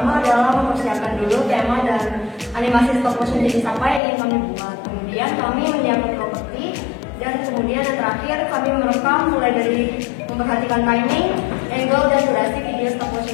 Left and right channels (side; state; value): right; drops out; at 4.0 s